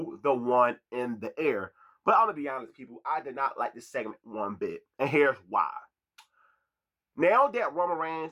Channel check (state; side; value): identical; both; correlation 1.00